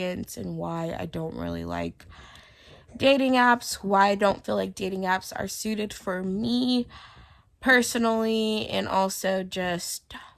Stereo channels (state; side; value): identical; both; correlation 1.00